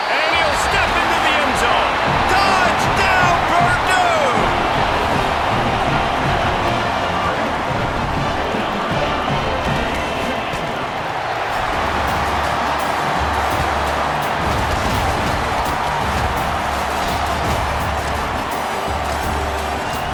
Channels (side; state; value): both; identical; correlation 1.00